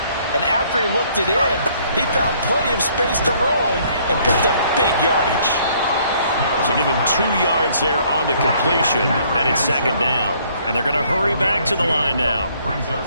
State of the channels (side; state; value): both; inverted; correlation -0.63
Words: and after he looked it in, he found plenty of space to roam and picked up big yardage. So give him 2 yards there on the completion, and it's second down. And they're going to hurry back to the line now. Brings up